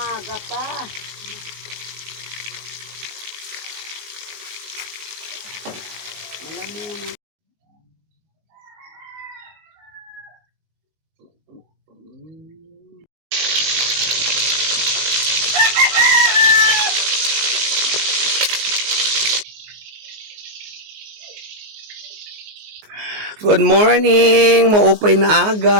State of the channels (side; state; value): left; late; 19 ms